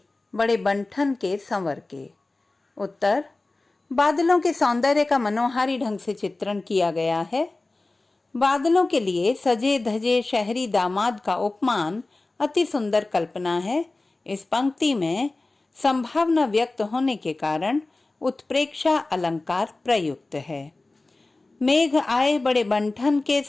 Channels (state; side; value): quieter; right; 3.2 dB